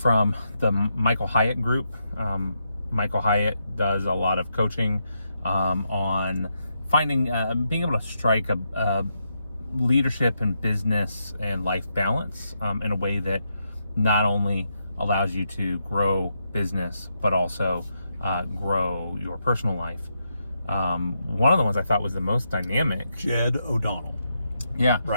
the Michael Hyatt group. Michael Hyatt does a lot of coaching on finding, being able to strike a leadership and business and life balance in a way that not only allows you to grow business, but also grow your personal life. One of the ones I thought was the most dynamic. Jed O Donald. Yeah.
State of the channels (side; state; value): both; inverted; correlation -0.82